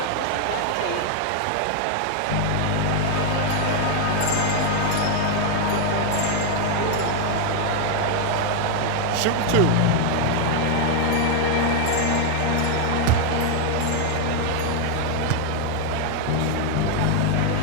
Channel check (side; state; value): both; different; correlation 0.01